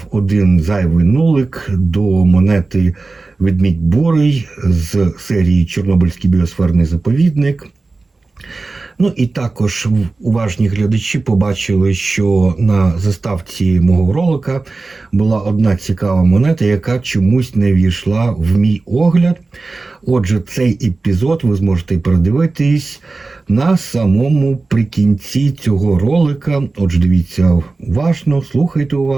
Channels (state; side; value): quieter; left; 3.6 dB